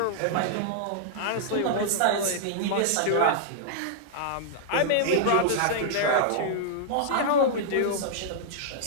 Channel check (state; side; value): different; both; correlation -0.01